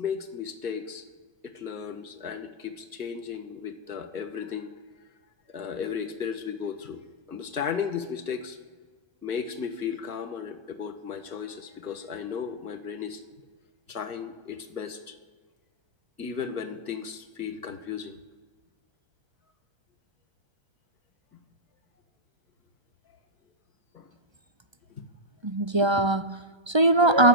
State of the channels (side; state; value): left; late; 1.3 ms